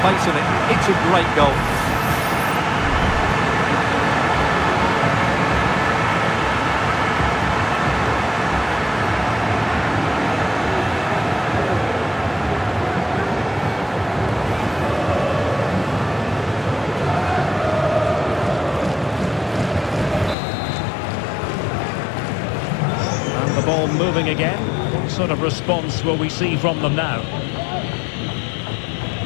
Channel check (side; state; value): right; drops out; at 20.4 s